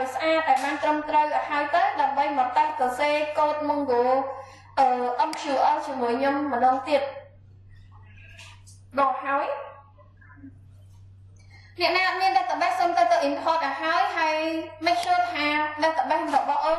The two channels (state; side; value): identical; both; correlation 1.00